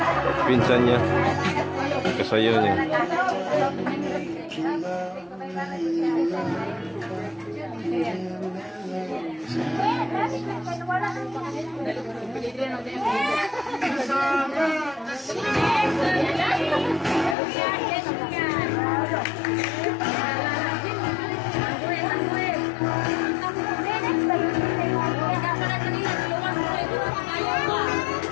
Pinsan niya, kasayaw niya.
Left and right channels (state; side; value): drops out; right; at 17.4 s